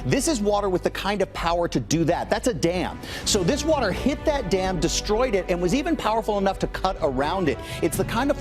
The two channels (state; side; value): identical; both; correlation 1.00